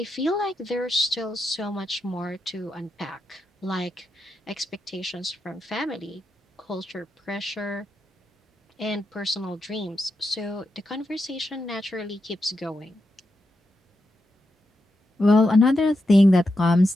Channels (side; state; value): both; normal; correlation 0.86